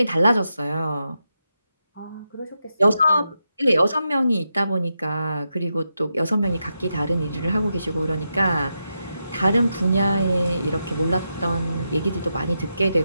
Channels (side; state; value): both; inverted; correlation -0.86